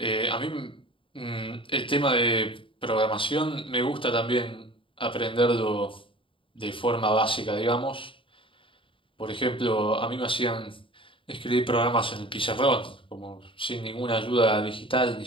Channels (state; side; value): late; right; 0.25 ms